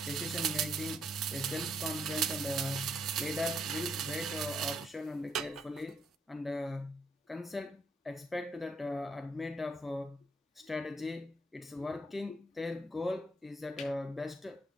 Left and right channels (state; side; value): normal; both; correlation 0.74